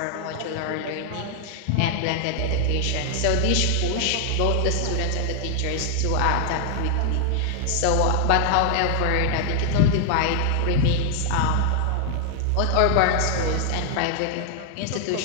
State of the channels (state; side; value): different; both; correlation 0.00